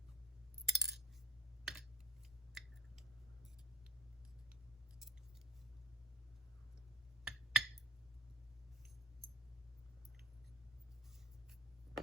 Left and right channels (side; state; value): both; normal; correlation 0.40